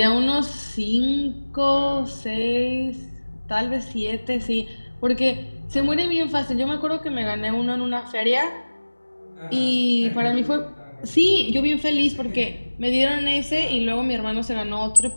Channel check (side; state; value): both; inverted; correlation -1.00